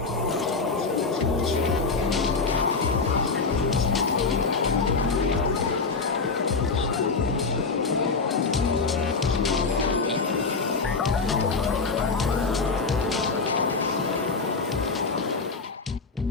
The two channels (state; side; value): quieter; right; 4.4 dB